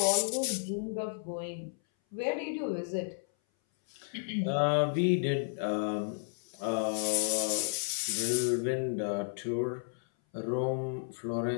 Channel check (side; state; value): right; silent; 56 dB below the other